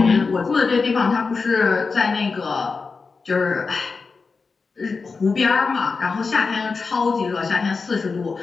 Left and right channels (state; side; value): quieter; right; 4.6 dB